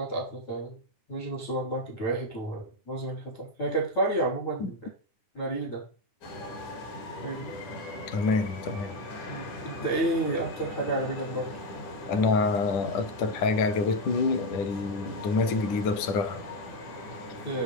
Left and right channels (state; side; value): late; right; 9.6 ms